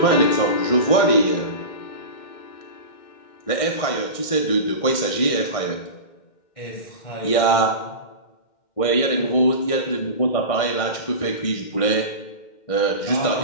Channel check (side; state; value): right; late; 2.1 ms